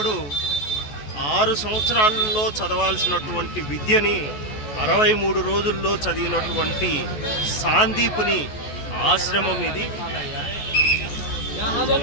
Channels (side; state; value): right; late; 14 ms